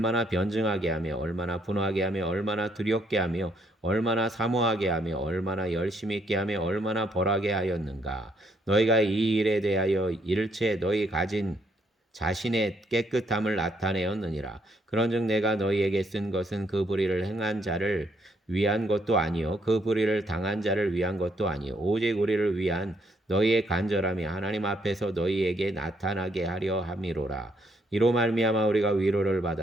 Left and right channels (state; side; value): normal; both; correlation 0.71